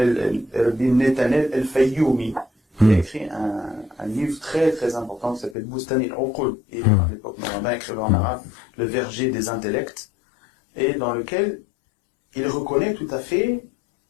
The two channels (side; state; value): right; drops out; at 5.6 s